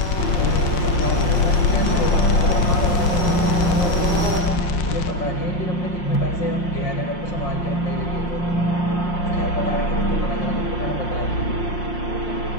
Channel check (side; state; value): right; late; 5.6 ms